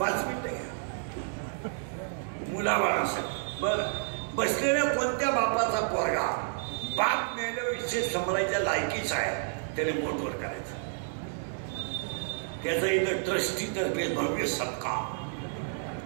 मिनिटं घ्या मुलाबाळासाठी. बरं, बसलेल्या कोणत्या बापाचा पोरगा बाप मेल्याविषयी समजायच्या लायकीचा आहे त्याने बोटवर करायचं? त्याचा इथं ट्रस्टी तर्फे भव्य सत्कार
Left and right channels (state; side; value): silent; left; digital silence